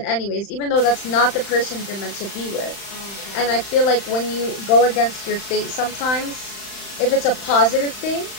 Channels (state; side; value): late; right; 35 ms